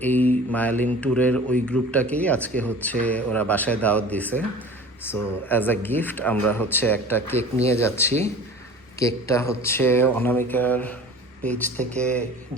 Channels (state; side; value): normal; both; correlation 0.41